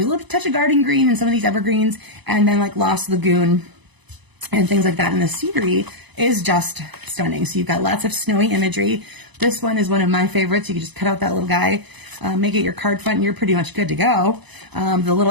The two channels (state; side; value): late; left; 1.0 ms